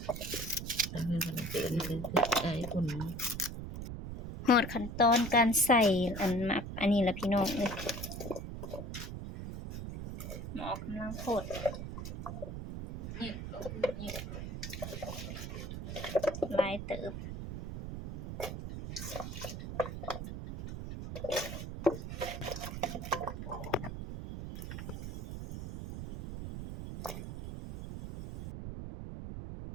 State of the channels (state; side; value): noise; right; rumble, 7 dB below the sound